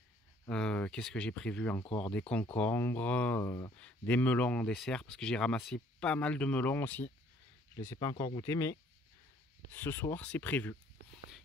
Qu'est-ce que j'ai prévu encore? Des concombres, des melons en dessert. Parce que j'ai ramassé pas mal de melons aussi. Je ne les ai pas encore goûtés, mais ce soir c'est prévu.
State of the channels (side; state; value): both; normal; correlation 0.60